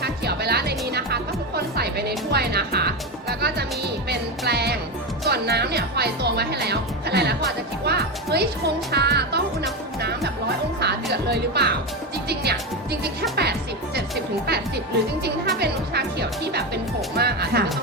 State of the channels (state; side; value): normal; both; correlation 0.15